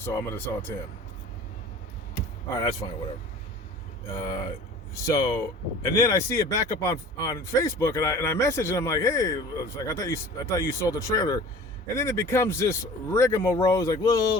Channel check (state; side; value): normal; both; correlation 0.43